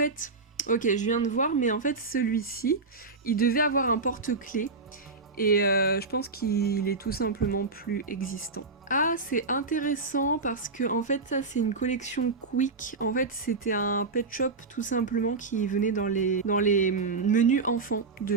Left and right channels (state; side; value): quieter; left; 4.0 dB